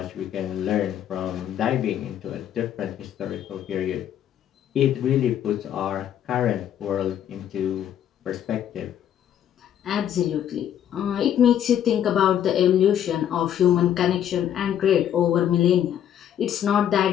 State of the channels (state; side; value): quieter; right; 10.2 dB